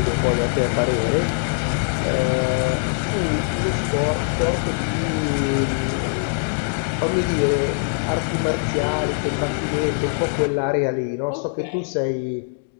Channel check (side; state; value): right; silent; digital silence